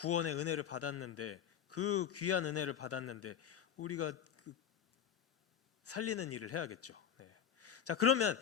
은혜를 받았는데 그 귀한 은혜를 받았는데 우리가 살리는 일을 해야겠죠. 자, 그러면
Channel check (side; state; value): right; quieter; 8.6 dB